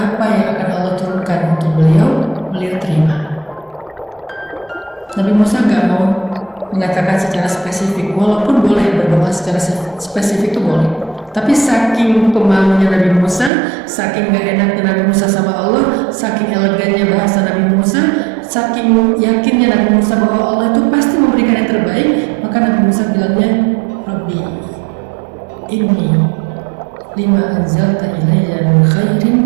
yang akan Allah turunkan untuk beliau terima. Nabi Musa nggak mau mengatakan secara spesifik, walaupun boleh berdoa secara spesifik itu boleh. Tapi saking pemalunya Nabi Musa, saking gak enaknya Nabi Musa sama Allah, saking elegannya bahasa Nabi Musa, saking yakinnya Nabi Musa bahwa Allah itu pasti memberikan yang terbaik, maka Nabi Musa bilangnya, Rabbi, inni lima anzalta ilayya min khairin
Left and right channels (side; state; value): left; drops out; at 13.5 s